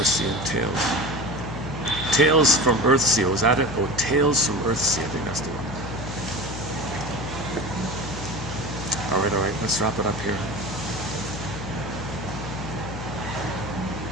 and Tales. Tales from Earthsea, was that it? Oh, Tales from Earthsea, I think that's the one. All right, let's wrap it up here.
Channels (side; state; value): left; noise; hum, 8 dB below the sound